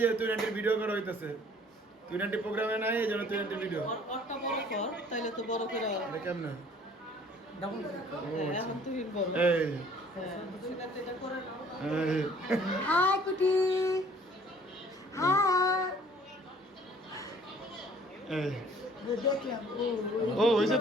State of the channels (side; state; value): both; normal; correlation 0.55